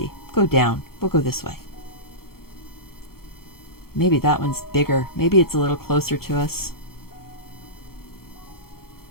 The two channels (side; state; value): right; late; 0.94 ms